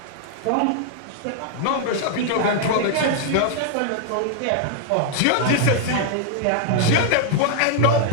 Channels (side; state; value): both; different; correlation 0.00